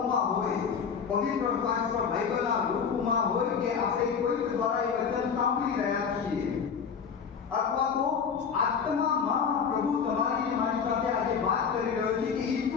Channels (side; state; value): right; quieter; 6.5 dB